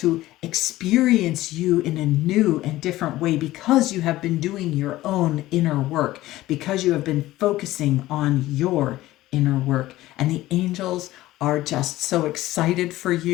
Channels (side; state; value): right; quieter; 16.3 dB